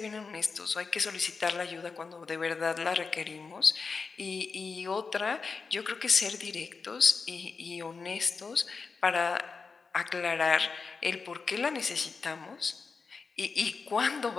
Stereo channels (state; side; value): quieter; right; 4.8 dB